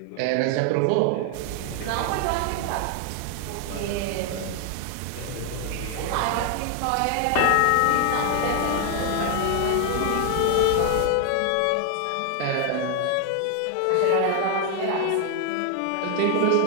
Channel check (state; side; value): different; both; correlation 0.00